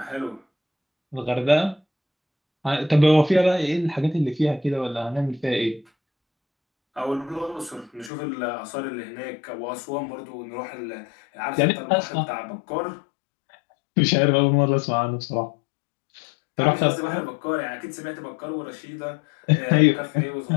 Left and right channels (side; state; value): right; drops out; at 8.1 s